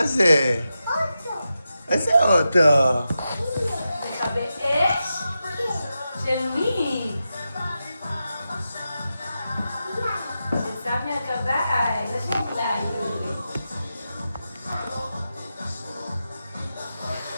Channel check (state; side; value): inverted; both; correlation -0.90